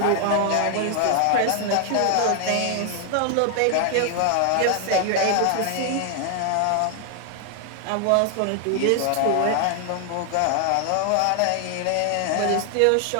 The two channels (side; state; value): both; different; correlation 0.00